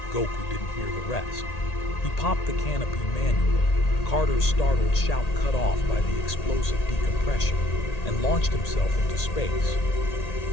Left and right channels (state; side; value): late; right; 1.8 ms